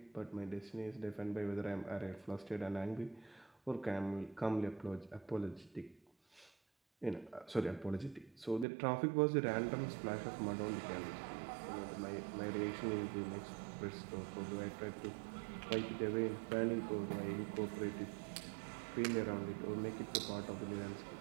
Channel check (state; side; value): drops out; left; at 8.7 s